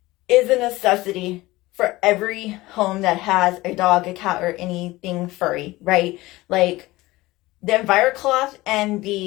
is a necessity for every home that has a dog, a cat, or anything furry, right? Like the Enviro Cloth and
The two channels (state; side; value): quieter; right; 19.3 dB